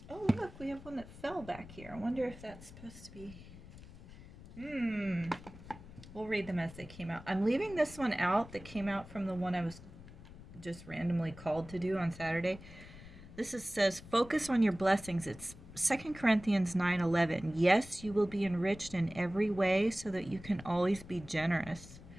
Oh look, we have one that fell back here. I wonder if that's supposed to be... We'll read them as they came out. I'm leaving this one out that came out from the one I was just randomly called to do on Saturday. Says, focus on your blessings. It's 2 Corinthians 9:11. Yes, you will be enriched in every way so that you can always be generous.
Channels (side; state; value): left; noise; rumble, 17 dB below the sound